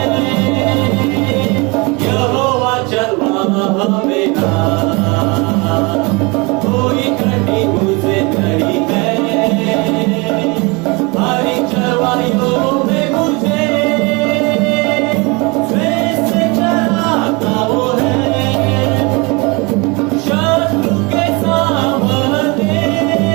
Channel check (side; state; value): left; quieter; 27.6 dB